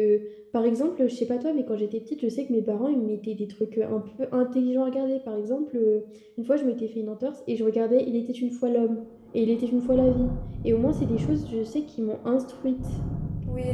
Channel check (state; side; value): identical; both; correlation 1.00